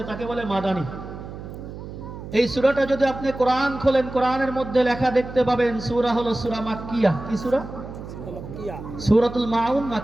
তাকে বলে মাদানী। এই সূরাটা যদি আপনি কোরআন খোলেন, কোরআনের মধ্যে লেখা দেখতে পাবেন সূরা হলো সূরা মাক্কিয়া। কি সূরা? সূরাতুল মাউন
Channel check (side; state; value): right; noise; hum, 11 dB below the sound